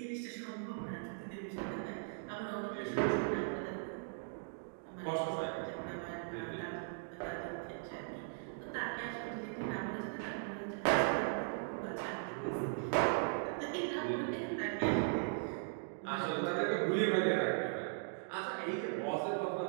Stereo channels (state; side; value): silent; left; digital silence